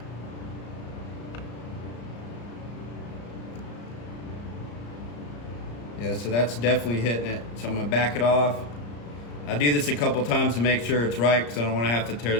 Yeah, so that's definitely hitting it. So I'm gonna back it off. I do this a couple times to make sure it's right, because I don't want to have to tear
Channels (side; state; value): right; late; 34 ms